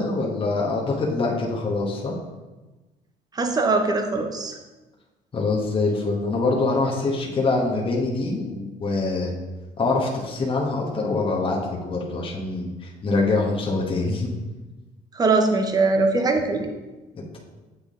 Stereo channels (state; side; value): normal; both; correlation 0.58